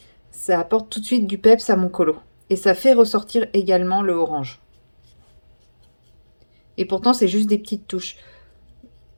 ça apporte tout de suite du peps à mon colo. Et ça fait ressortir également le orange. Et pourtant, c'est juste des petites touches.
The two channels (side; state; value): both; inverted; correlation -1.00